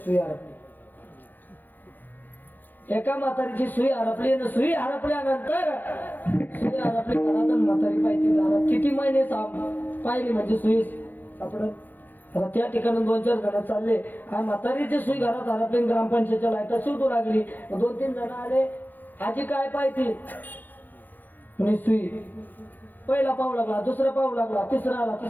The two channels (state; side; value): late; right; 0.087 ms